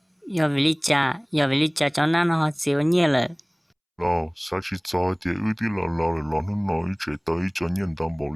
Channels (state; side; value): identical; both; correlation 1.00